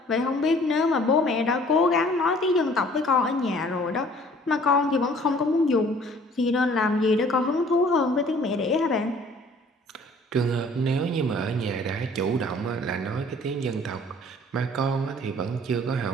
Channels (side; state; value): both; normal; correlation 0.54